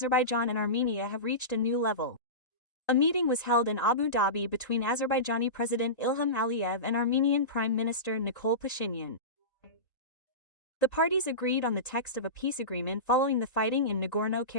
and Armenia have reached a new level. A meeting was held in Abu Dhabi between Azerbaijani President Ilham Aliyev and Armenian Prime Minister Nikol Pashinyan. The parties agreed on the text of a peace agreement following the fighting in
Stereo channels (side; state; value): right; late; 1.8 ms